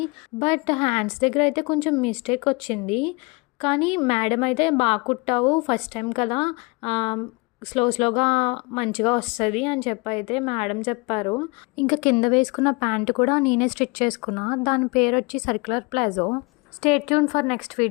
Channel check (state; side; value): quieter; right; 27.9 dB